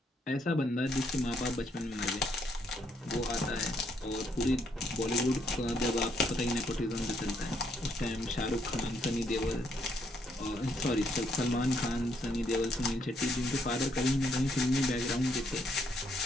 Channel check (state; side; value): normal; both; correlation 0.72